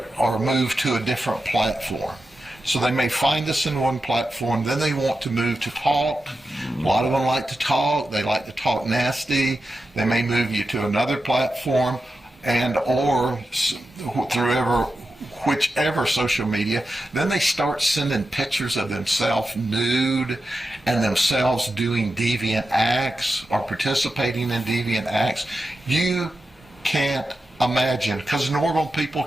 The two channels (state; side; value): normal; both; correlation 0.90